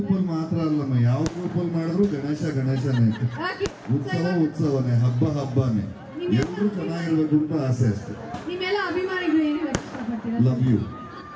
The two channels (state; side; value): identical; both; correlation 1.00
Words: ಅಲ್ಲಿ ಮಾತ್ರ ಅಲ್ಲಮ್ಮ, ಯಾವ ಗ್ರೂಪ್ ಅಲ್ಲಿ ಮಾಡಿದ್ರು ಗಣೇಶನೇ. ಉತ್ಸವನೇ, ಹಬ್ಬನೇ. ಎಲ್ಲರೂ ಚೆನ್ನಾಗಿರ್ಬೇಕು ಅಂತ ಆಸೆ ಅಷ್ಟೇ. ನಿಮ್ಮೆಲ್ಲ ಅಭಿಮಾನಿಗಳು ಏನು ಹೇಳಕ್ ಇಷ್ಟಪಡ್ತೀರಾ? Love you.